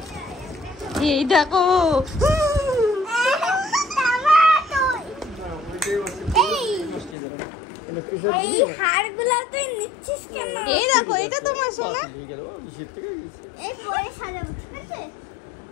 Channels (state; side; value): drops out; right; at 7.2 s